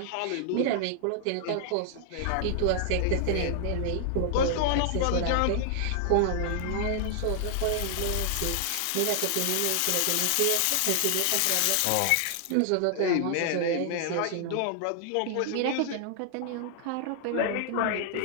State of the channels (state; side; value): different; both; correlation 0.00